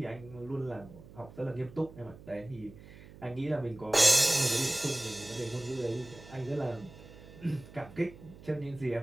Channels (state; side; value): noise; right; hum, 18 dB below the sound